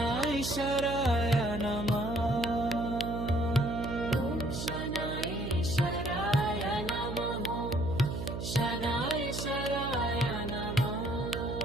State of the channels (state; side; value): noise; right; hum, 5 dB below the sound